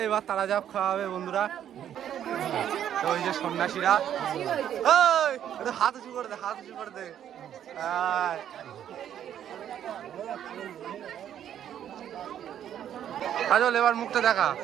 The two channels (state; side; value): quieter; left; 10.1 dB